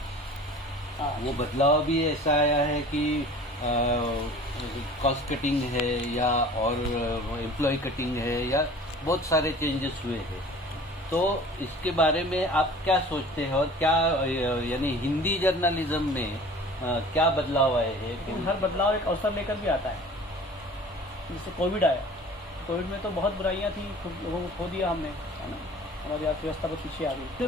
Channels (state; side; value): normal; both; correlation 0.44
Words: वो बदलाव भी ऐसा आया है कि कॉस्ट कटिंग है या और एम्प्लॉय कटिंग है या बहुत सारे चेंजेस हुए हैं। तो इसके बारे में आप क्या सोचते हैं और क्या यानी हिंदी जर्नलिज्म में क्या बदलाव आए हैं? हर बदलाव एक अवसर लेकर भी आता है। जैसे कोविड आया, कोविड में तो बहुत बुराइयां थी, लोगों को खो दिया हमने, है ना, हमारी अर्थव्यवस्था बहुत पीछे आ गई। फिर